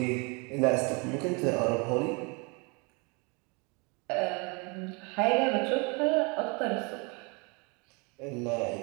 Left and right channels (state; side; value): quieter; left; 30.7 dB